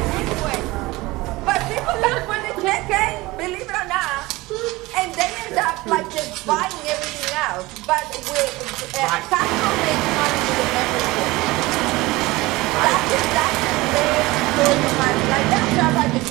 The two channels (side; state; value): left; quieter; 20.7 dB